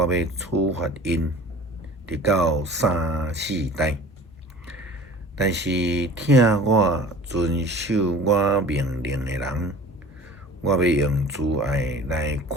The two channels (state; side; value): normal; both; correlation 0.43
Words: 要处罚因，直到3、4代。但是听我遵守我命令的人，我要用慈爱来